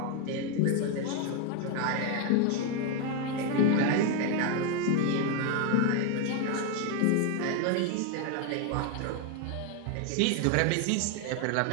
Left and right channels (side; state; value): both; different; correlation 0.01